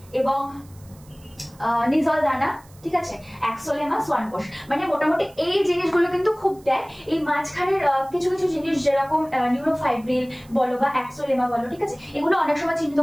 এবং নিজল দানা। ঠিক আছে, অ্যাক্সোলেমা, সোয়ান কোষ। মানে মোটামুটি এই জিনিসগুলো কিন্তু খুব দেয়। এই মাঝখানের কিছু কিছু জিনিস যেরকম নিউরোফাইব্রিল বলো বা অ্যাক্সোলেমা বলো, ঠিক আছে, এগুলো অনেক সময়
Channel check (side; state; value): right; noise; hiss, 27 dB below the sound